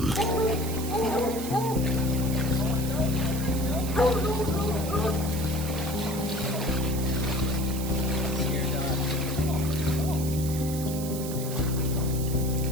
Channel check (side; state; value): right; noise; hiss, 10 dB below the sound